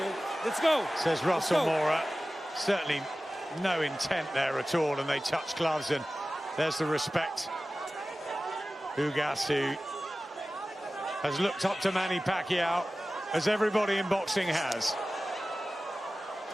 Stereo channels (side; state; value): both; normal; correlation 0.96